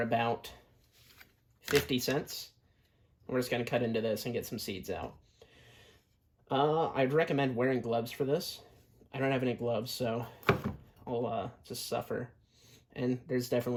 about 50 cents. We're just going to cut into this and get some seeds out. I'd recommend wearing gloves for this. I don't have any gloves, so I'll just suffer. And there's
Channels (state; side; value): identical; both; correlation 1.00